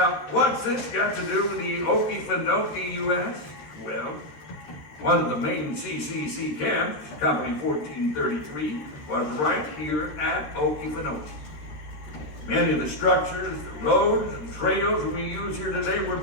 what's this got to do with the Okefenokee, you ask? Well, one of the main CCC camps, Company 1433, was right here at Okefenokee. Many of the structures, the roads, and trails we use here today were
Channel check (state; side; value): late; right; 13 ms